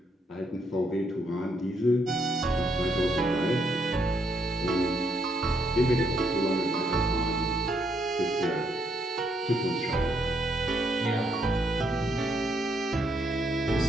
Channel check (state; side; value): normal; both; correlation 0.74